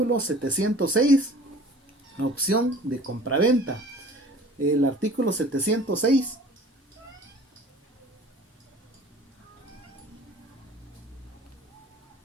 706, opción de compraventa. El artículo 706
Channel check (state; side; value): normal; both; correlation 0.46